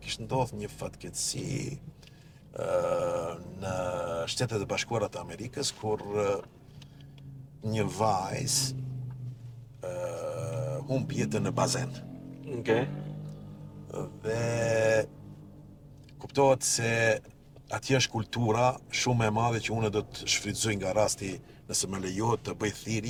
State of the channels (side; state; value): both; identical; correlation 1.00